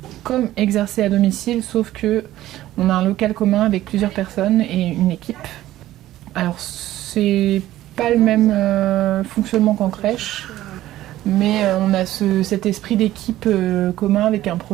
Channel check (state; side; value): quieter; left; 14.5 dB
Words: comme exercer à domicile, sauf que on a un local commun avec plusieurs personnes et une équipe. Alors, c'est pas le même fonctionnement qu'en crèche, mais on a cet esprit d'équipe commun avec un